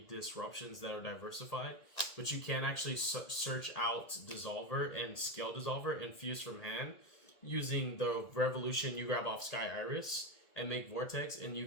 disruptions that are diversified. But you can actually search out Dissolver and Scale Dissolver and Fuse from hand using the Revolution you grab off Sky Iris and make Vortex, and you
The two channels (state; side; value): late; right; 1.9 ms